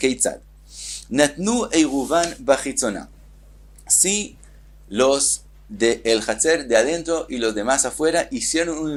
Natnu eiruvan bachitzona. Si los del hatzer de adentro y los demás afuera hicieron un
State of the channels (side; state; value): both; identical; correlation 1.00